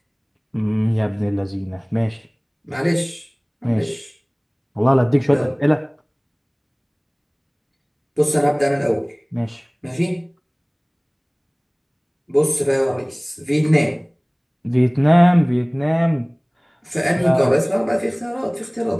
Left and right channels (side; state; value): both; identical; correlation 1.00